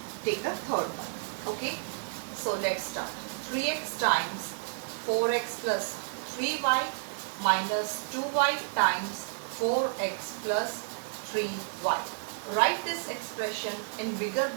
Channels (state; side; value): silent; left; 57 dB below the other